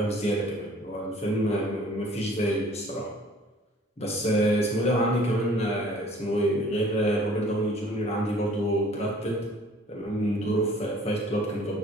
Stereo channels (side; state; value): both; normal; correlation 0.53